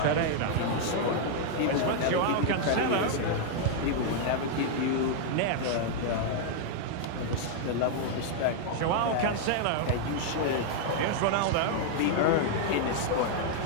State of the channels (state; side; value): different; both; correlation 0.00